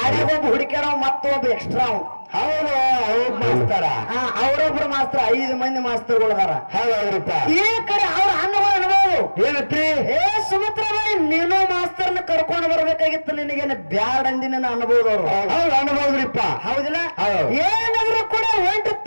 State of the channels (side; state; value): both; inverted; correlation -1.00